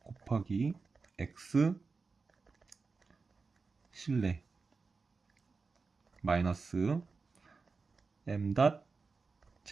x 실내 마이너스 m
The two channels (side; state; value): left; quieter; 4.4 dB